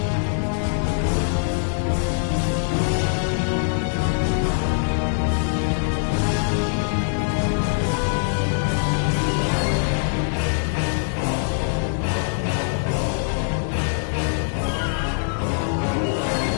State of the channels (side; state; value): right; silent; digital silence